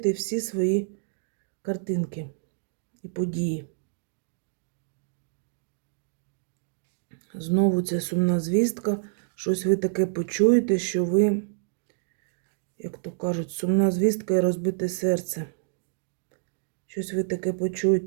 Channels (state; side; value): silent; left; digital silence